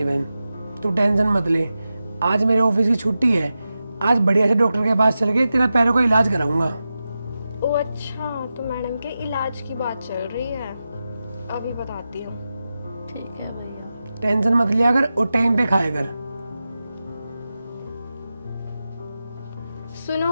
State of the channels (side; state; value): both; inverted; correlation -0.92